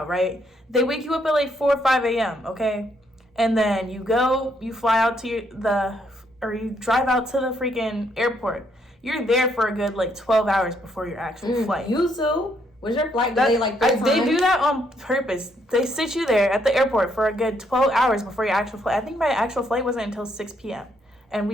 right? They wake you up at like 4 or 5 a.m., okay? And then you fly out to you drive out to the freaking airport. You're there for a good like 12 hours before your actual flight. You too? Was your flight delayed like 3 times? They do that on purpose. They sit you there at the airport for a good 12 hours before your actual flight. I think my actual flight wasn't until 6 p.m. And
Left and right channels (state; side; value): normal; both; correlation 0.72